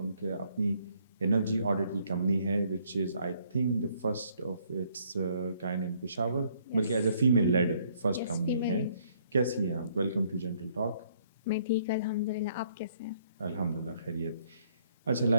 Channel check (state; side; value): inverted; both; correlation -0.67